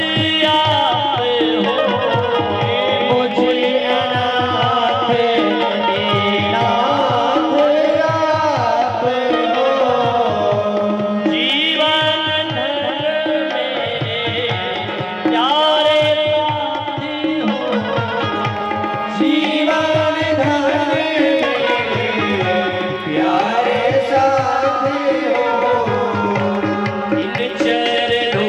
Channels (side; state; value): both; identical; correlation 1.00